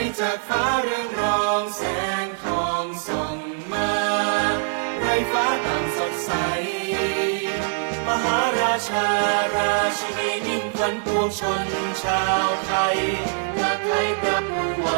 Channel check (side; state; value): left; silent; digital silence